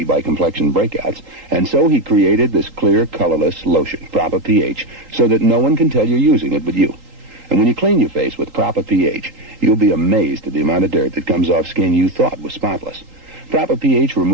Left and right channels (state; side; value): late; left; 3.8 ms